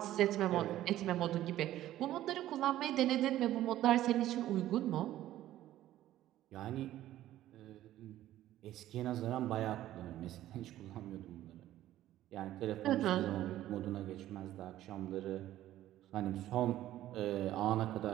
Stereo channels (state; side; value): quieter; left; 13.7 dB